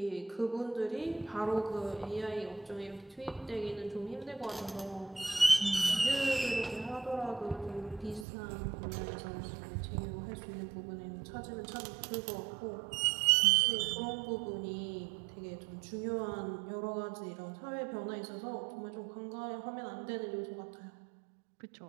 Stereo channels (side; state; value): left; drops out; at 8.2 s